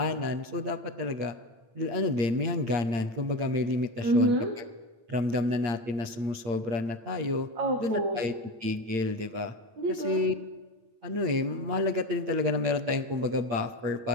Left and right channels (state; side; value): late; left; 8.8 ms